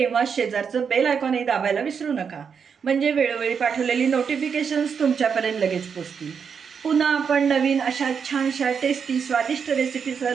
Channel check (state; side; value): quieter; left; 6.5 dB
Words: शेजारचं बेल आयकॉनही दाबायला विसरू नका, म्हणजे वेळोवेळी पाठवलेली नोटिफिकेशन्स तुमच्यापर्यंत लगेच पोचतील. पुन्हा आपण नवीन अशा छानशा टेस्टी स्वादिष्ट रेसिपीसह